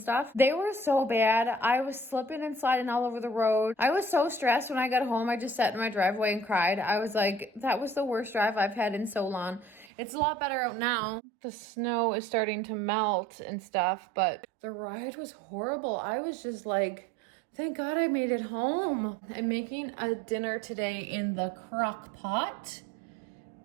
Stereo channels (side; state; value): left; drops out; at 9.9 s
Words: they were so bad. I was slipping and sliding all over the road. I was so stressed when I got home. I just sat in my driveway and cried. I was like, that was the worst drive I've had in so long. It's a lot better out now. The snow is starting to melt and stuff, but the ride was horrible. I was just like, thank God I made it home. I'm making a dinner today in the crock pot.